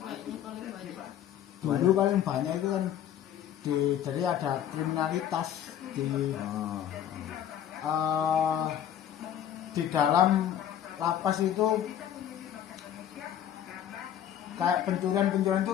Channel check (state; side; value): quieter; right; 10.3 dB